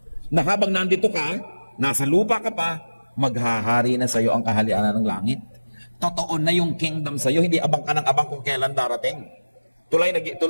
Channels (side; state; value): both; inverted; correlation -1.00